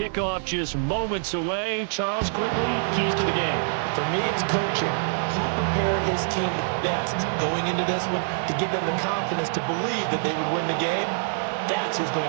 just moments away. Charles, quickly, keys to the game. For me, it's coaching. Who prepared his team the best going into this one to give them the confidence to believe that they would win the game? That's who's going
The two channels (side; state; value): left; silent; digital silence